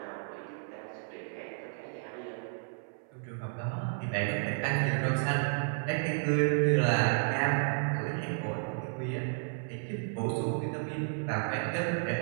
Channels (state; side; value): silent; left; 56 dB below the other